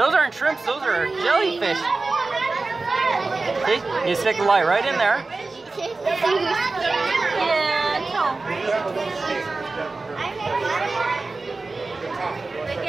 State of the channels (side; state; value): left; quieter; 3.6 dB